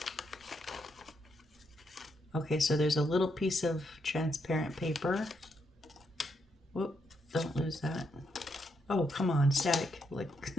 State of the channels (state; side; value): normal; both; correlation 0.78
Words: Okay, so there's a little piece of transparent paper. Whoop, don't lose that. Oh, come on, static. Like,